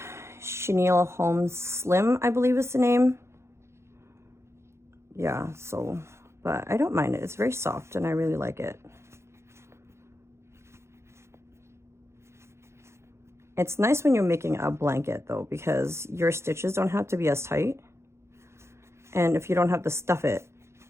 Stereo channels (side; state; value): left; late; 0.13 ms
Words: Holmes Slim, I believe is the name. Yeah, so, but I don't mind it. It's very soft and I really like it. It's nice when you're making a blanket though, because your stitches don't have to be as tight. And if you don't have to stuff it,